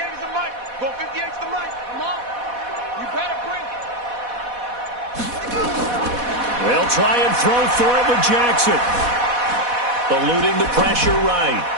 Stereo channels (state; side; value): late; left; 4.1 ms